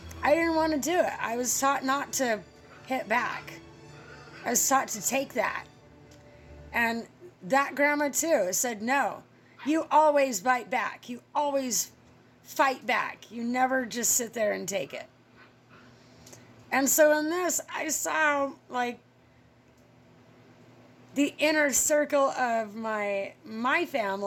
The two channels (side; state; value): both; identical; correlation 1.00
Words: I didn't want to do it. I was taught not to hit back. I was taught to take that. And that grandma too said, no, you always bite back. You always fight back. You never just sit there and take it. And so in this, I saw like the inner circle of my